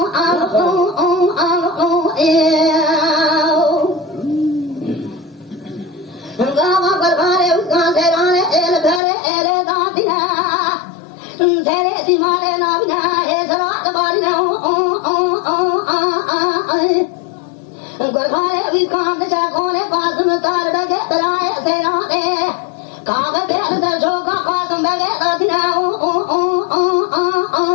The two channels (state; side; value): drops out; right; at 9.0 s